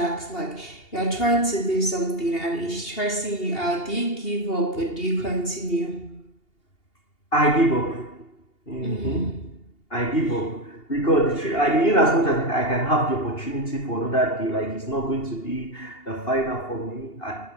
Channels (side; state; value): right; late; 2.8 ms